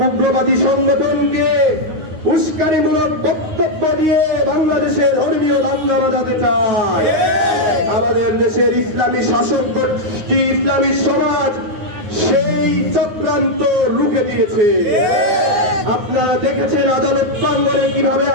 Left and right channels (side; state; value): left; late; 9.6 ms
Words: উগ্রবাদী সংগঠনকে উস্কানিমূলক বক্তব্য দিয়ে বাংলাদেশের ধর্মীয় দাঙ্গা বাজাতে চায়। আমাদের দেশের ইসলামী শাসক গোষ্ঠী, ইসলামী সমাজ সেই চক্রান্ত রুখে দিয়েছে। আপনারা দেখেছেন আদালত প্রাঙ্গণে কিভাবে